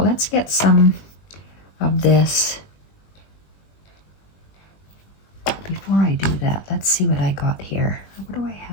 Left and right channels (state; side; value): late; right; 20 ms